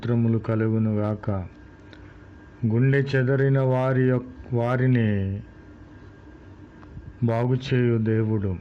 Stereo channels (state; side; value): identical; both; correlation 1.00